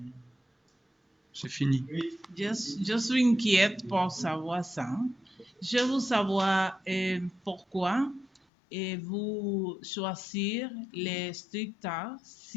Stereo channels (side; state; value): right; drops out; at 8.4 s